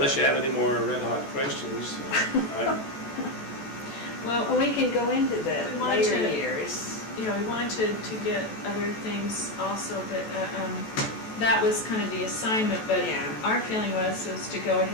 you have any more red hot questions. Well, we can go into the We wanted later to- years. we wanted to get other things also, but that was kind of the assignment, but Yeah. our feeling was to go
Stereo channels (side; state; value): right; late; 14 ms